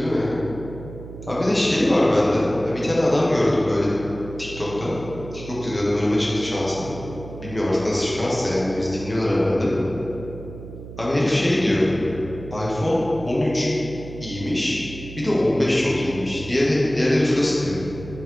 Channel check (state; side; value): noise; right; hum, 13 dB below the sound